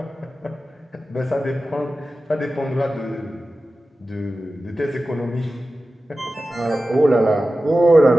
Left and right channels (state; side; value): normal; both; correlation 0.94